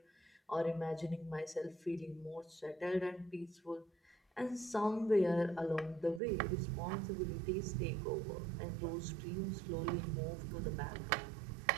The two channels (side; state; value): left; drops out; at 6.2 s